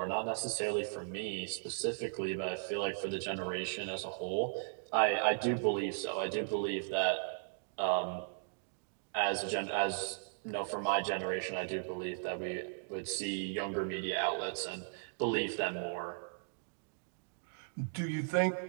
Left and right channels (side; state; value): left; silent; digital silence